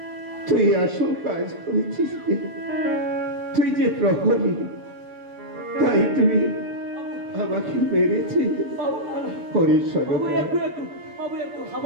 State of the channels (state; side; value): late; left; 7.1 ms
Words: তুই আসল কাজ করেছিস। তুই যে প্রহরী, তাই তুই আমাকে মেরেছিস। বাবু না, না। হরি বাবু সরকার একটু একটু বাবু একটু